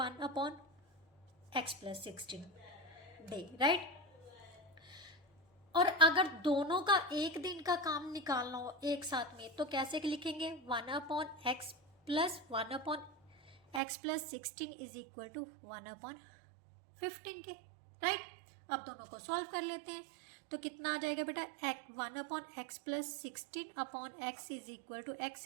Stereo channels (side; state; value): left; drops out; at 13.8 s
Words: plus 16 डे, राइट। और अगर दोनों का एक दिन का काम निकालना हो एक साथ में तो कैसे लिखेंगे, 1/x plus 1/x plus 16 is equal to 1/15 के, राइट। अब दोनों को सॉल्व कर लेते हैं तो कितना आ जाएगा बेटा, 1/x plus 16/x is equal to x